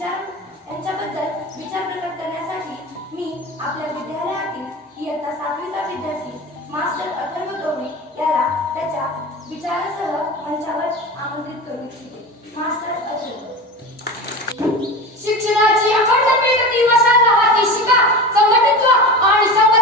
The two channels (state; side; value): normal; both; correlation 0.29